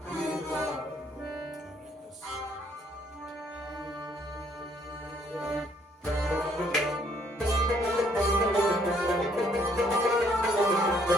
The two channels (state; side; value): normal; both; correlation 0.66